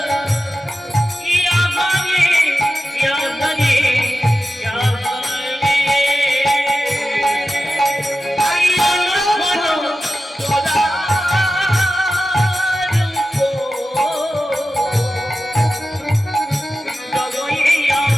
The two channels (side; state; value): both; normal; correlation 0.93